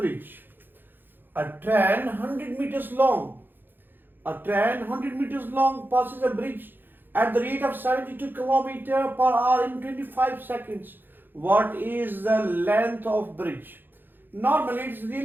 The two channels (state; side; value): late; left; 0.095 ms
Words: A train 100 meters long. A train 100 meters long passes a bridge at the rate of 72 km per hour in 25 seconds. What is the length of bridge? Normally, it's